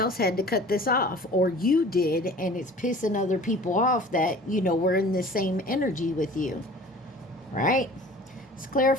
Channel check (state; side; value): normal; both; correlation 0.45